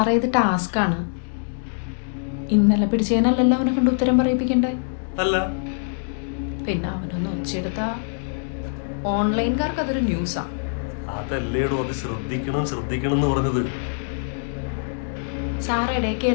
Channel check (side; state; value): right; silent; digital silence